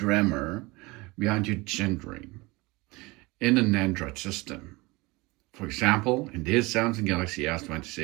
behind your gendering in an Android system. For example, in this Samsung Galaxy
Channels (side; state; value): left; quieter; 23.7 dB